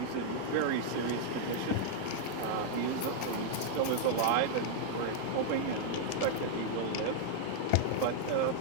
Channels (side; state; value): both; different; correlation -0.01